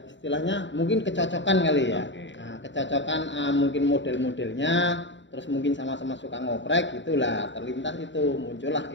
istilahnya mungkin kecocokan kali ya. Oke. Nah, kecocokan mungkin model-modelnya, terus mungkin sama-sama suka ngoprek gitulah, terlintas itu muncullah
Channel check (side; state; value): right; late; 0.54 ms